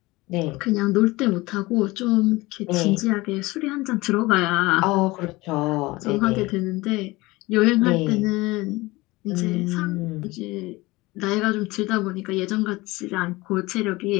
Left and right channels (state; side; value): quieter; right; 21.2 dB